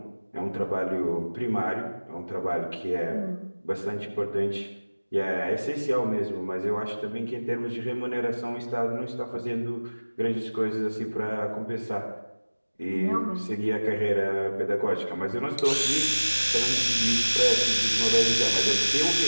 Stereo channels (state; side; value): inverted; both; correlation -1.00